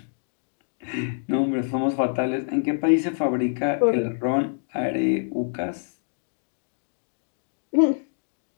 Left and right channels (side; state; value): right; silent; digital silence